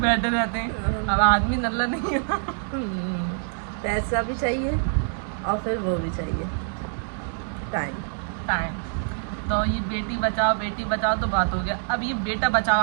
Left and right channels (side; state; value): left; silent; digital silence